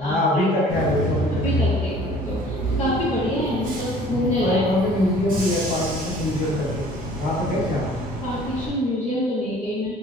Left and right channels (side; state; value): both; normal; correlation 0.51